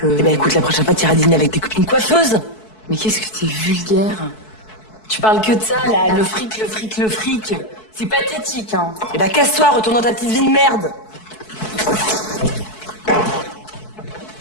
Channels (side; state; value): right; late; 4.6 ms